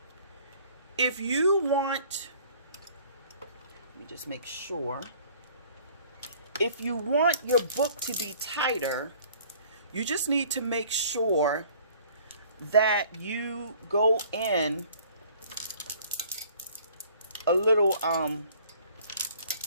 if you want, let me just make sure. If you want your book to be tighter, you just need to make sure that you go in a little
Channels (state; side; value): inverted; both; correlation -0.54